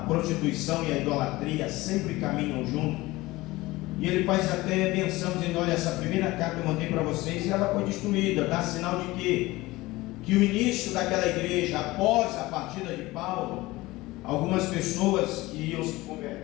prostituição e a idolatria sempre caminham juntos. E ele faz até menção dizendo: olha, essa primeira carta eu mandei para vocês e ela foi destruída. Dá sinal de quê? Que o início daquela igreja, após a partida de Paulo, algumas pessoas que iam se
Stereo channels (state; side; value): quieter; right; 19.7 dB